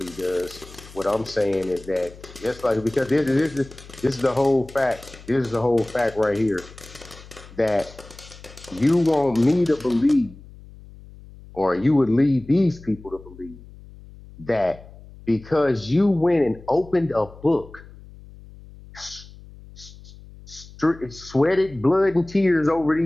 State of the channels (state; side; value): noise; left; hum, 19 dB below the sound